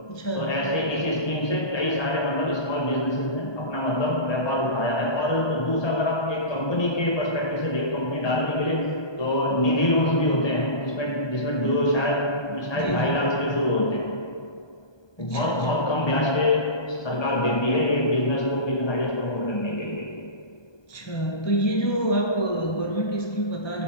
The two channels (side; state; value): right; late; 1.2 ms